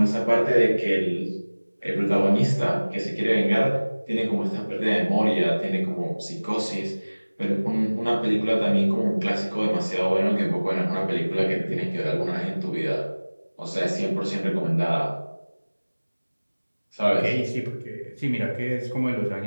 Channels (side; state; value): both; inverted; correlation -1.00